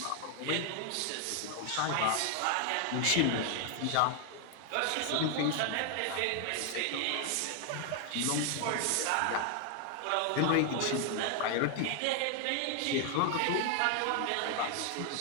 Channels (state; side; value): different; both; correlation 0.00